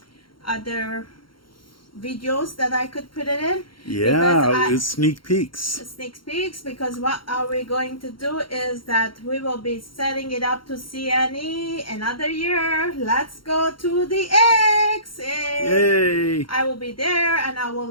other videos that I could put it in. Yeah, it's sneak peeks. Because what are we going to do is that we will be setting it up to CNE another year. Let's go to the X. Yay! I will be there and I will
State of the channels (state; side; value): late; right; 0.73 ms